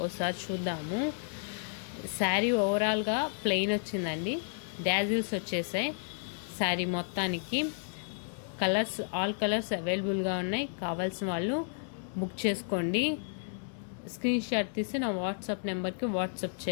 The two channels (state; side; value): silent; right; 56 dB below the other